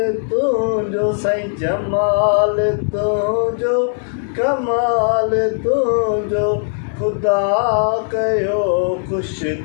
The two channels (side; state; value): right; silent; digital silence